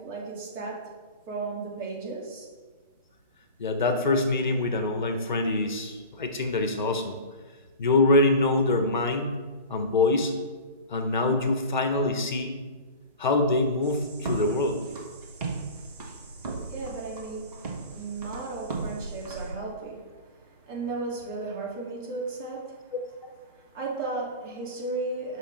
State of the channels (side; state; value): both; inverted; correlation -0.34